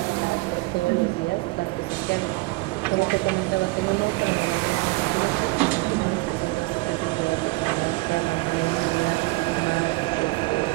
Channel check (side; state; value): left; quieter; 23.7 dB